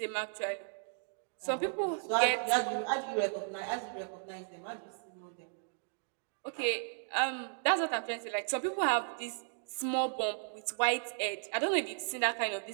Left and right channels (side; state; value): left; silent; digital silence